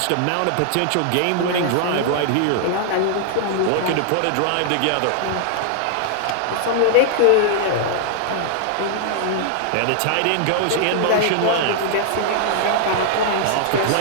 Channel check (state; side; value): different; both; correlation -0.01